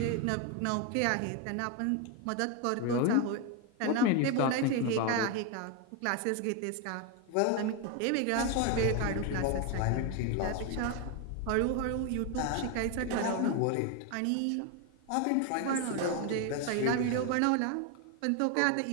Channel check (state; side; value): different; both; correlation 0.02